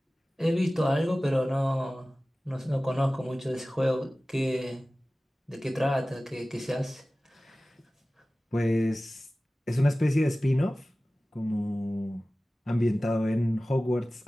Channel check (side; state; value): both; normal; correlation 0.97